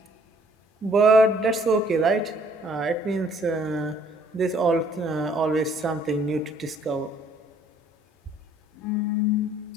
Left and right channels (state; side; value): normal; both; correlation 0.61